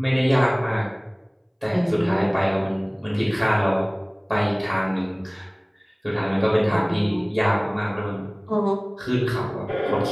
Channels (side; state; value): both; identical; correlation 1.00